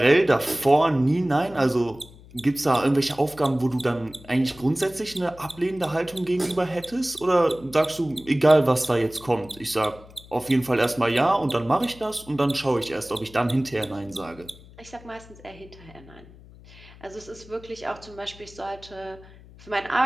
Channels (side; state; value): left; noise; hum, 21 dB below the sound